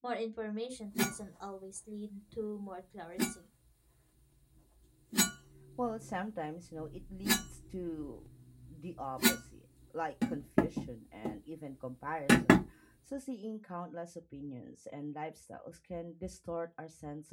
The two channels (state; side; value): identical; both; correlation 1.00